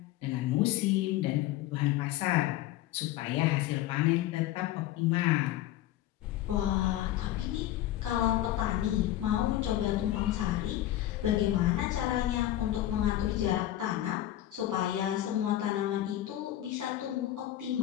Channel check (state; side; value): quieter; right; 13.9 dB